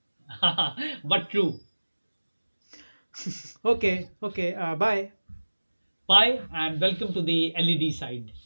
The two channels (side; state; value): both; inverted; correlation -1.00